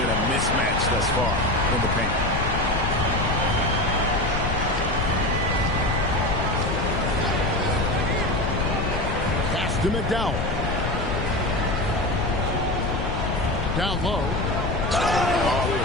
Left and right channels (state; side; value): noise; left; rumble, 1 dB below the sound